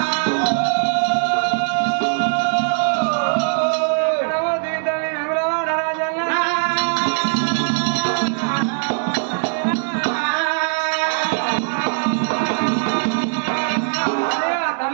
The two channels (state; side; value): silent; left; 66 dB below the other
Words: ఎక్కడవో దిగుతుంది విమలవాడ రాజన్న